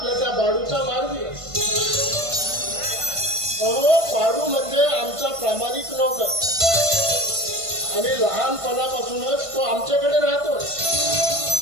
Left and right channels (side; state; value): left; late; 1.5 ms